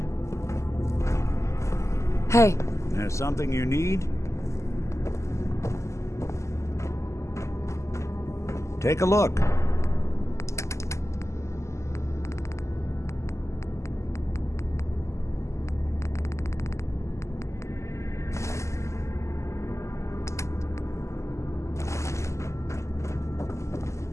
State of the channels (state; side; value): late; right; 0.14 ms